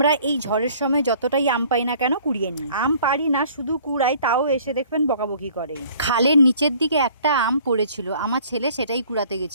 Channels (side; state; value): both; inverted; correlation -0.54